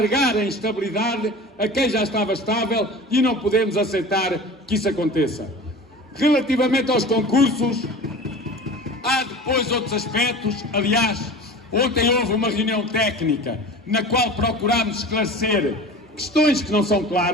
a instabilidade a quem já estava estável, e não podemos aceitar que isso aconteça. Relativamente aos concursos, há depois outros aspectos. Aliás, ontem houve uma reunião técnica na qual procurámos esclarecer questões que não são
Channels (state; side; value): normal; both; correlation 0.37